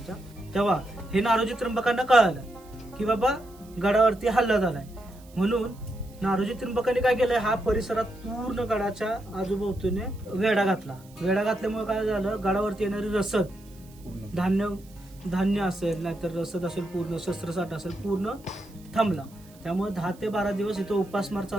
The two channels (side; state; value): right; noise; hiss, 26 dB below the sound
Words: तेव्हा हे नारोजी त्रिंबकांना कळालं की बाबा गडावरती हल्ला झालाय. म्हणून नारोजी त्रिंबकांनी काय केलंय, हा परिसरात पूर्ण गडाच्या आजूबाजूने वेढा घातला. वेढा घातल्यामुळे काय झालं, गडावरती येणारी रसद, धान्य असेल, नाहीतर रसद असेल, पूर्ण शस्त्रसाठा असेल, पूर्ण थांबला. त्यामुळे 10 ते 12 दिवस इथं उपासमार